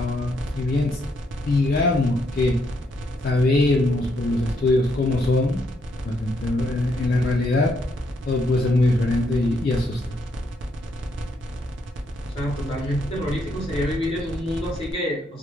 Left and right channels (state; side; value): normal; both; correlation 0.75